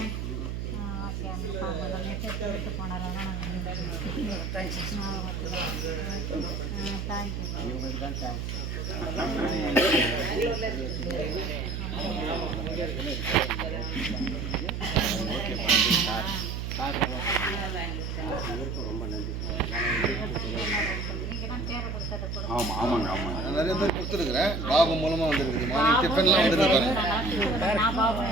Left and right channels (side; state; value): right; noise; hum, 4 dB below the sound